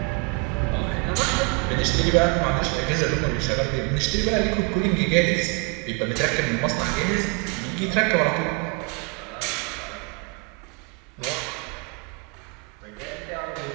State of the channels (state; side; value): quieter; left; 31.0 dB